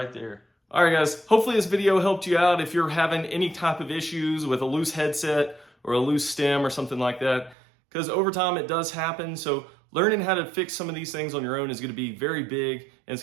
there. All right, guys. Hopefully this video helped you out if you're having any type of issues with a loose headset or a loose stem or something like that. Because over time it does happen. So learning how to fix some of these things on your own is going to be very big, and it's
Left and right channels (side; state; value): left; drops out; at 7.6 s